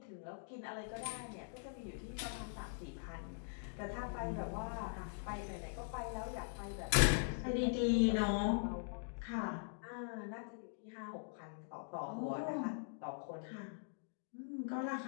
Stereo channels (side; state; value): right; silent; digital silence